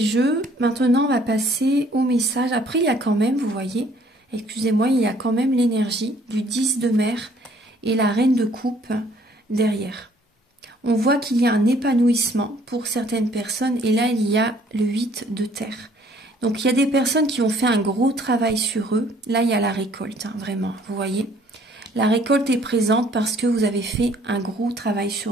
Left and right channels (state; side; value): normal; both; correlation 0.60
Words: Maintenant, on va passer au message. Après, il y a quand même, vous voyez, excusez-moi, il y a quand même l'énergie du 10 de mer et la reine de coupe derrière. On voit qu'il y a un épanouissement pour certaines personnes et là il y a le 8 de terre. Donc il y a des personnes qui ont fait un gros travail sur eux. Là il y a la récolte, hein, vraiment, vous voyez. La récolte est présente parce que vous avez fait un gros travail